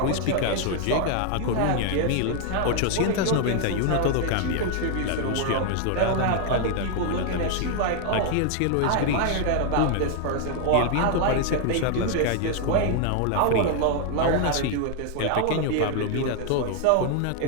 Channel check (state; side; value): different; both; correlation 0.00